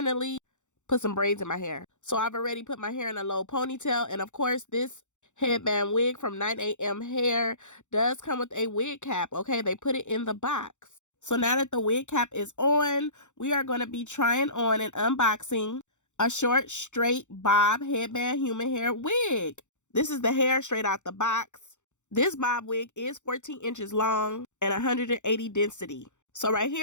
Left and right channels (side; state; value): right; late; 0.84 ms